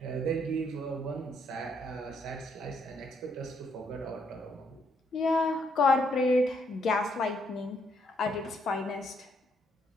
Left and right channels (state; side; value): normal; both; correlation 0.72